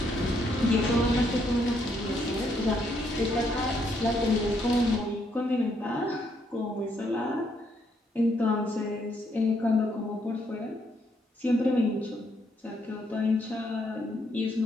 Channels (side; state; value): both; normal; correlation 0.73